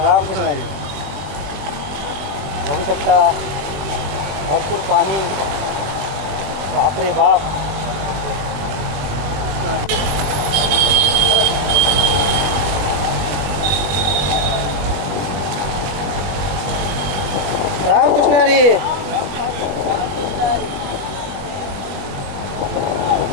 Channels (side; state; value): left; late; 21 ms